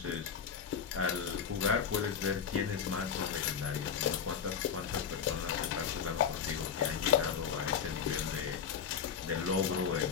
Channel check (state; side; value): quieter; right; 7.3 dB